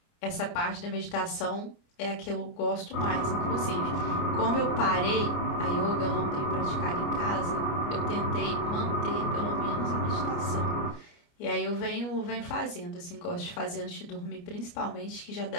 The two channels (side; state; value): right; late; 29 ms